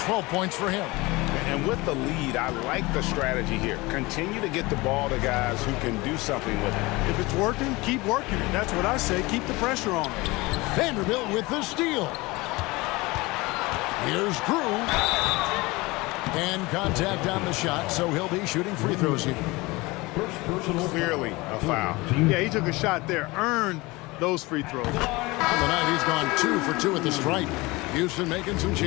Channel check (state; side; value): quieter; right; 22.7 dB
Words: 12 points for him. And with the lead, I like the strategy here. Continue to get the ball to guys who can do something with it. If it's working, keep working it. That's what I say. Keep the pressure on. Vanderbilt with the steal. Here's Drew. And contact on the shot, so he'll be shooting free throws here. Clearly a foul. Yeah, he took a shot there. Earned those free throws. On the night, he's gone 2 for 2 at the stripe. Houston making some